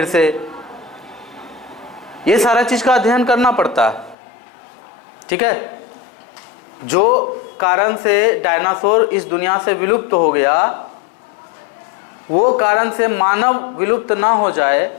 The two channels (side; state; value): right; drops out; at 4.2 s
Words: से। ये सारा चीज का अध्ययन करना पड़ता है। ठीक है, जो कारण से डायनासोर इस दुनिया से विलुप्त हो गया, वो कारण से मानव विलुप्त ना हो